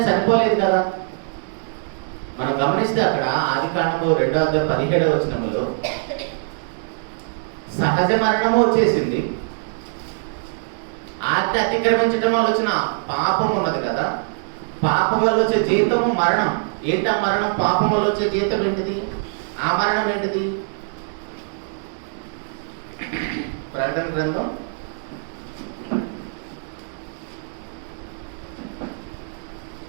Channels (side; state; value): left; silent; 64 dB below the other